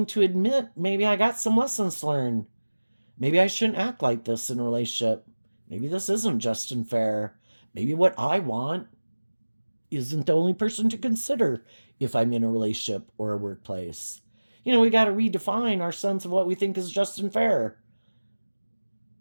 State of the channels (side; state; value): both; inverted; correlation -1.00